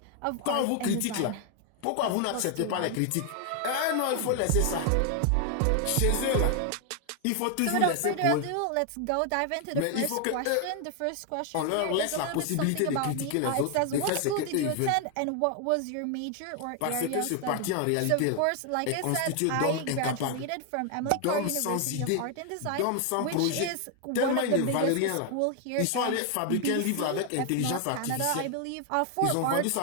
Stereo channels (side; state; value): both; different; correlation 0.00